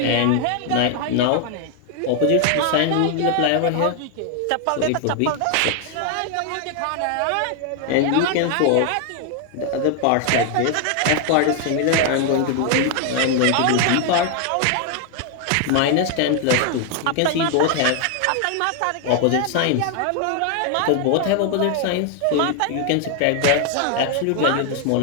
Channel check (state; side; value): different; both; correlation 0.00